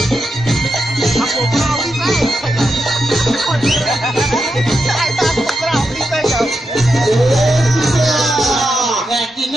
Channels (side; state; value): both; normal; correlation 0.86